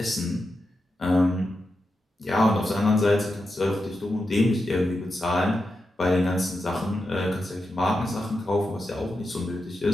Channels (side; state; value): both; normal; correlation 0.88